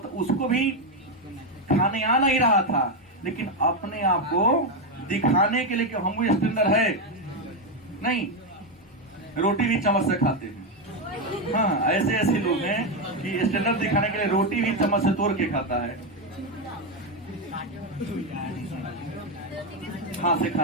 उसको भी खाने आ नहीं रहा था, लेकिन अपने आप को दिखाने के लिए कि हम भी स्टैंडर्ड है। नहीं, रोटी भी चम्मच से खाते हैं। हाँ, ऐसे ऐसे लोग हैं कि स्टैंडर्ड दिखाने के लिए रोटी भी चम्मच से तोड़ के खाता है, हाथ से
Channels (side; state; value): both; normal; correlation 0.07